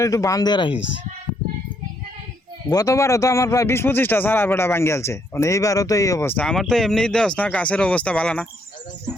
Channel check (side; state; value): both; normal; correlation 0.72